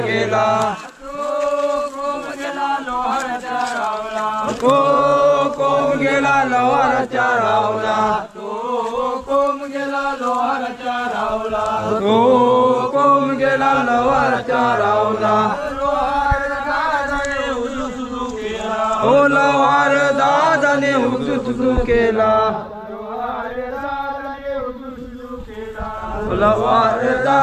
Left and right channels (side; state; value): both; identical; correlation 1.00